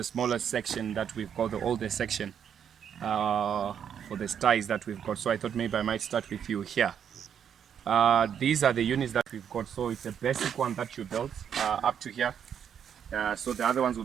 smallest section that we've got, the oldest section for the styes that we've got. So I thought maybe I might start with you here. These are the units that we've got. So it's a basic one that you built up to here. So the other ones will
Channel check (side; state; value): left; quieter; 8.4 dB